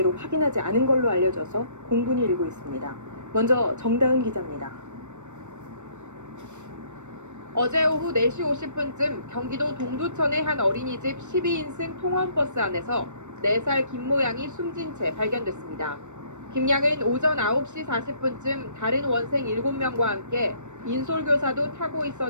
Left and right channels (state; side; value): late; left; 0.84 ms